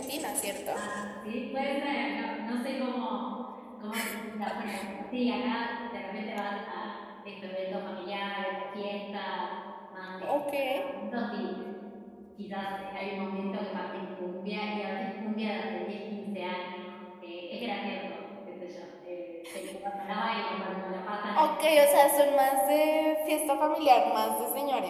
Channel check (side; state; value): both; identical; correlation 1.00